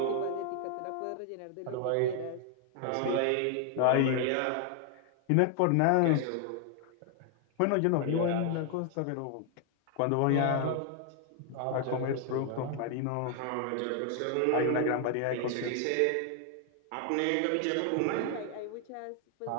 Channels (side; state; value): both; different; correlation 0.00